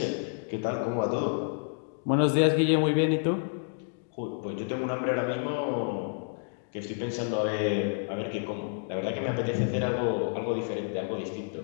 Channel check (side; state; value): right; silent; digital silence